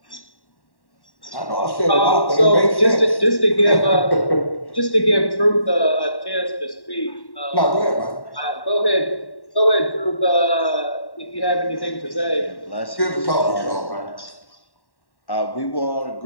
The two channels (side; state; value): right; late; 1.1 ms